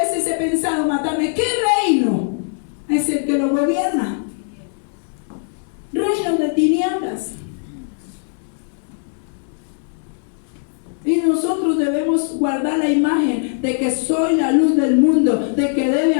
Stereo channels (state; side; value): silent; right; digital silence